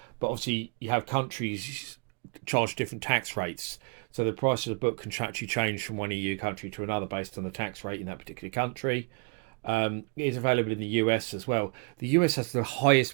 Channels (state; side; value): quieter; left; 36.7 dB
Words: but obviously you have countries charge different tax rates. So the price of the book can actually change from one EU country to another based on the tax rate in that particular country. It is available in the US as well. The US has the